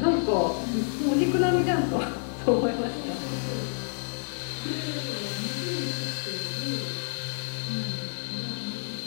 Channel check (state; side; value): silent; right; 59 dB below the other